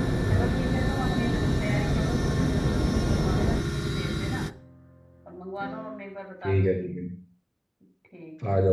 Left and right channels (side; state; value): both; identical; correlation 1.00